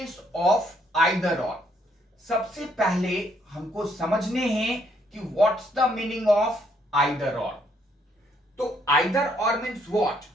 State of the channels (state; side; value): normal; both; correlation 0.70